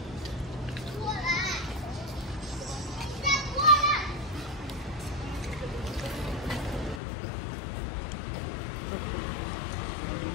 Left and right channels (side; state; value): right; drops out; at 7.0 s